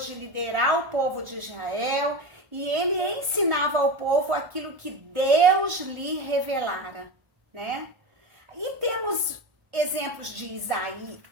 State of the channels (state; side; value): late; left; 1.3 ms